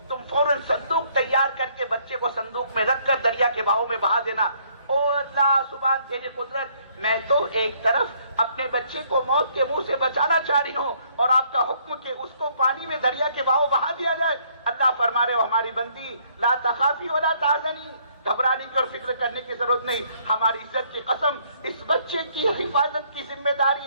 تم فوراً صندوق تیار کر کے بچے کو صندوق میں رکھ کر دریا کے بہاؤ میں بہا دینا. او اللہ سبحان تیری قدرت, میں تو ایک طرف اپنے بچے کو موت کے منہ سے بچانا چاہ رہی ہوں اور آپ کا حکم کہ اس کو پانی میں دریا کے بہاؤ بہا دیا جائے. اللہ فرما رہے ہو ہماری بندی لا تخافی ولا تحزنی, گھبرانے کی اور فکر کرنے کی ضرورت نہیں, ہماری عزت کی قسم اس بچے کی حفاظت کی ذمہ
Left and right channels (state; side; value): inverted; both; correlation -0.65